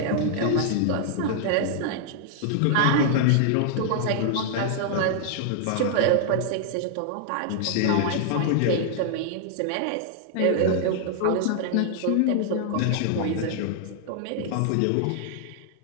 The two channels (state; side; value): different; both; correlation -0.01